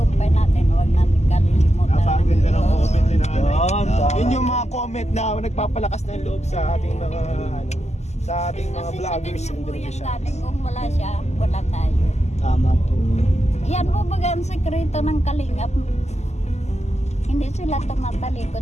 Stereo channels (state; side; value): late; right; 0.33 ms